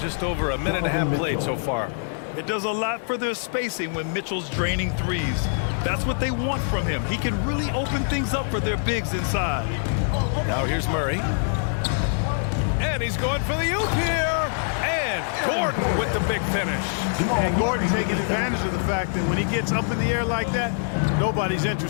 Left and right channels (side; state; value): right; silent; 58 dB below the other